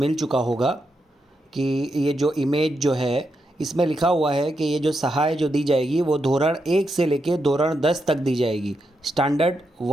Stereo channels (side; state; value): both; normal; correlation 0.84